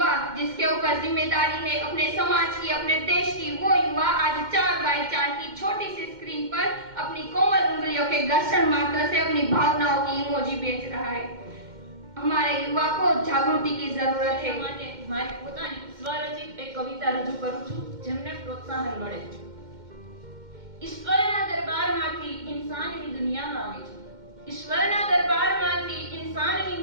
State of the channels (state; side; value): late; left; 2.1 ms